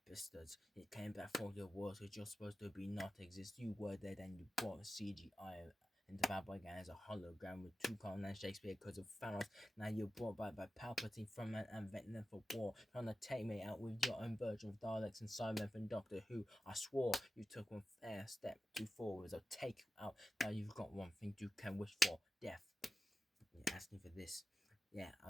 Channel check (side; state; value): both; normal; correlation 0.92